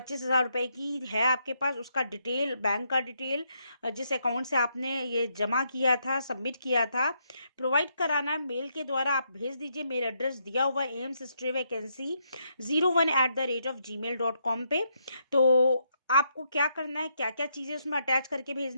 रुपये की है आपके पास, उसका डिटेल, बैंक का डिटेल, जिस अकाउंट से आपने ये जमा किया था, सबमिट किया था, प्रोवाइड कराना है। मेल के द्वारा आप भेज दीजिए। मेल एड्रेस दिया हुआ एम्स स्टे वैकेंसी 01@gmail.com पे। तो आपको क्या करना है, क्या क्या चीज़ें उसमें अटैच करके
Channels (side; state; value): both; inverted; correlation -0.77